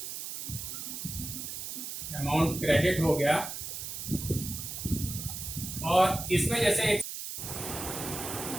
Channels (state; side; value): noise; right; hiss, 6 dB below the sound